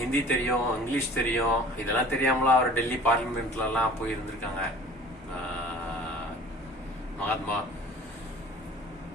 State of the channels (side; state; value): both; normal; correlation 0.46